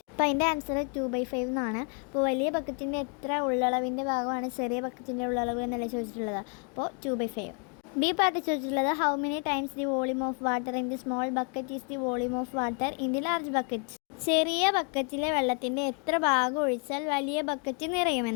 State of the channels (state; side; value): quieter; right; 38.1 dB